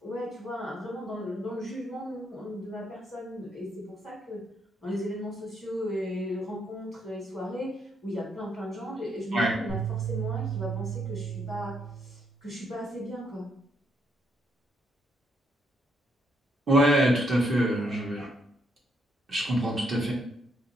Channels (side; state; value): both; normal; correlation 0.74